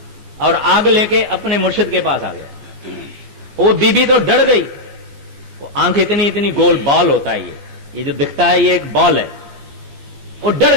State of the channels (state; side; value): late; left; 14 ms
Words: और आग लेके अपने मुर्शिद के पास आ गया। वो बीबी तो डर गई। वो आंख इतनी इतनी गोल बाल होता है, ये जो दिखता है ये एक बाल है। वो डर